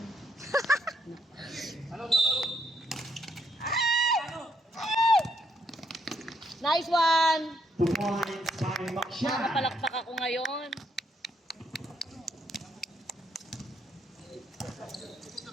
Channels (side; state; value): both; normal; correlation 0.73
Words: Nice one! 2 points by Makshan. Nakapalakpak ako ngayon.